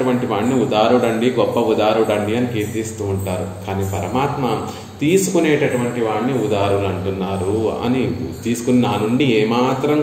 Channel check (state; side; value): identical; both; correlation 1.00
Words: వాడిని ఉదారుడండి, గొప్ప ఉదారుడండి అని కీర్తిస్తూ ఉంటారు. కానీ పరమాత్మ తీసుకునేటటువంటి వాడిని ఉదారులు అంటున్నారు అని తీసుకుని నా నుండి ఏమాత్రం